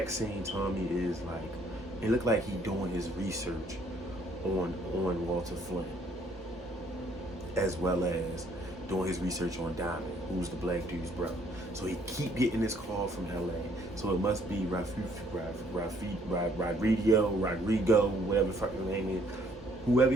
scene, Tommy is like, it looked like he doing his research on Walter Flynn, as well as doing his research on Diamond, who's the black dude's brother. So he keep getting this call from LA. So it must be Rodrigo, whatever the fuck his name is. Whoever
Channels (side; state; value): both; normal; correlation 0.64